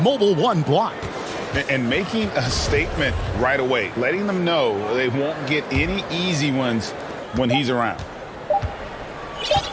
mobile one block. And making a statement right away, letting them know they won't get any easy ones when he's around.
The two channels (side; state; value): both; identical; correlation 1.00